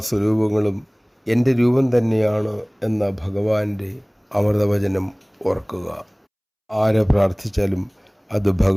സ്വരൂപങ്ങളും എൻ്റെ രൂപം തന്നെയാണ് എന്ന ഭഗവാന്റെ അമൃതവചനം ഓർക്കുക. ആരെ പ്രാർത്ഥിച്ചാലും അത്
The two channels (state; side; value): identical; both; correlation 1.00